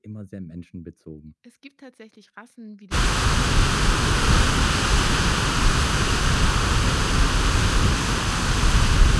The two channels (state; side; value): identical; both; correlation 1.00